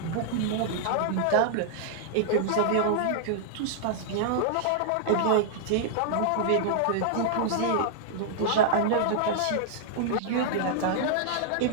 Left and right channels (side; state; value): both; different; correlation -0.01